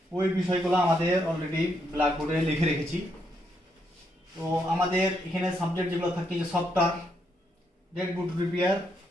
ওই বিষয়গুলো আমাদের অলরেডি ব্ল্যাকবোর্ডে লিখে রেখেছি। তো আমাদের এখানে সাবজেক্ট যেগুলো থাকে যে সফটওয়্যার, ডেডবুট রিপেয়ার,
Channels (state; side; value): normal; both; correlation 0.77